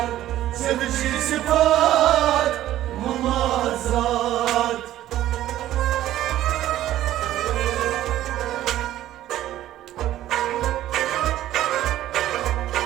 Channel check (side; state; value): left; quieter; 13.5 dB